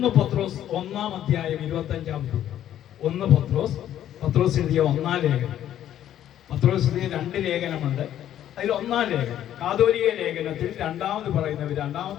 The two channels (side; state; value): right; quieter; 11.4 dB